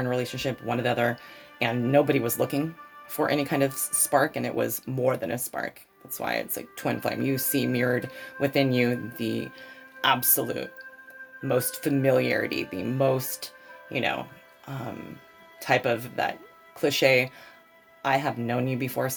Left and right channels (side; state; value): both; identical; correlation 1.00